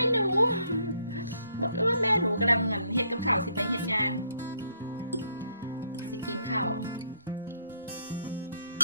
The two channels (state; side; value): inverted; both; correlation -0.70